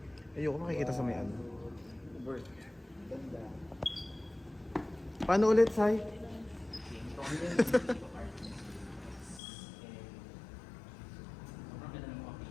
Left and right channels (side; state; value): right; drops out; at 9.4 s